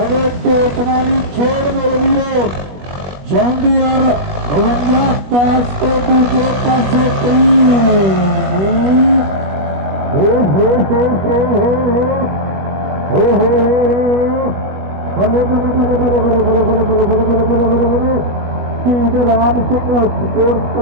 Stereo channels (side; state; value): left; late; 20 ms